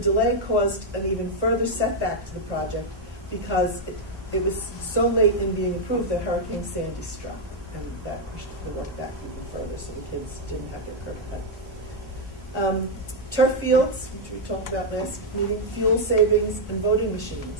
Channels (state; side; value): normal; both; correlation -0.01